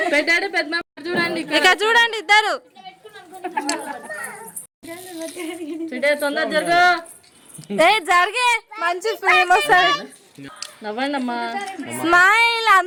పెట్టాడు పెద్ద. చూడండి ఇక చూడండి ఇద్దరు తొందర జరుగు. జరిగే మంచి ఫిల్మ్ వస్తుంది. నవ్వండి అమ్మా. స్మైల్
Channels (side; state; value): both; identical; correlation 1.00